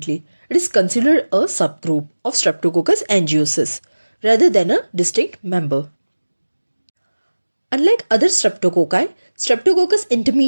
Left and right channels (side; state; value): both; inverted; correlation -1.00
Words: it is considered a subgroup of Streptococcus angiosus rather than a distinct member. Unlike other streptococci, Streptococcus